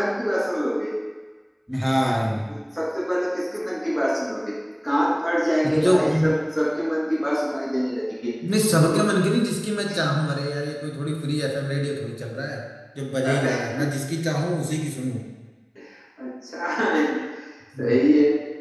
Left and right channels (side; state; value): both; identical; correlation 1.00